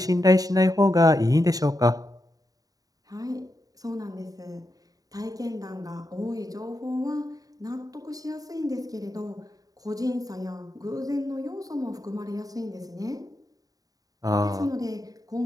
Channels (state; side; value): late; left; 0.18 ms